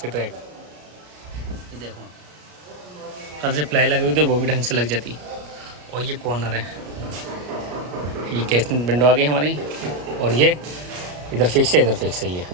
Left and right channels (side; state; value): left; late; 33 ms